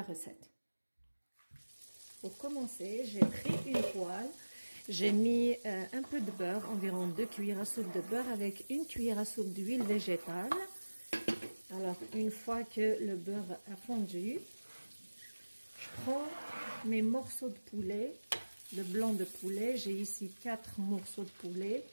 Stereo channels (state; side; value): inverted; both; correlation -1.00